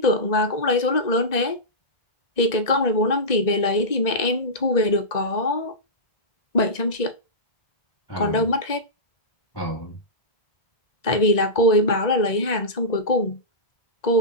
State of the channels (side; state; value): right; late; 1.9 ms